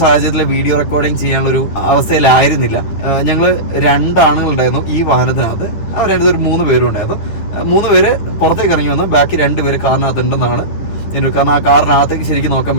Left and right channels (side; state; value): right; late; 10 ms